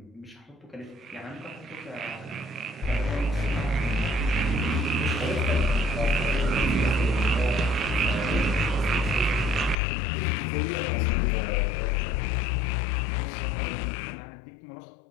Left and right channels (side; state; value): right; drops out; at 9.8 s